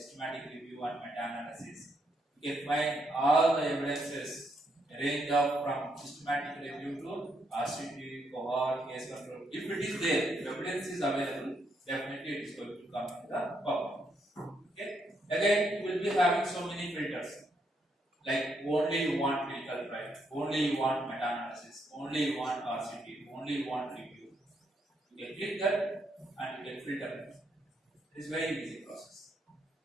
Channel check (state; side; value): normal; both; correlation 0.76